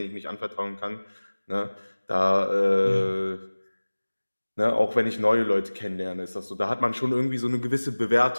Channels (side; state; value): both; inverted; correlation -1.00